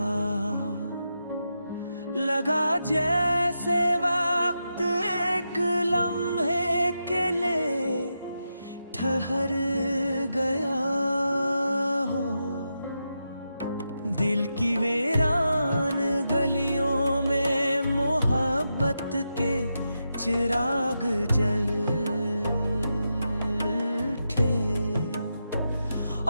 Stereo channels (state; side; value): inverted; both; correlation -0.87